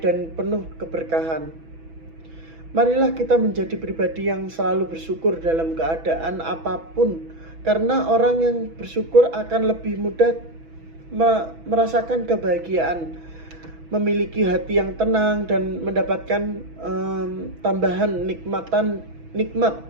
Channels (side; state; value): left; late; 6.1 ms